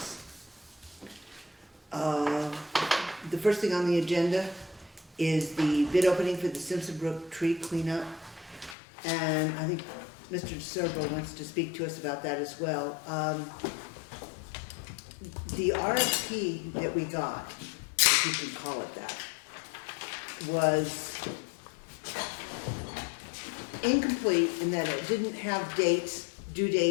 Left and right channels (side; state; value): right; drops out; at 8.8 s